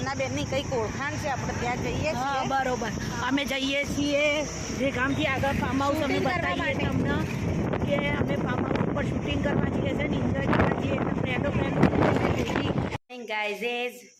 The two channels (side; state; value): both; identical; correlation 1.00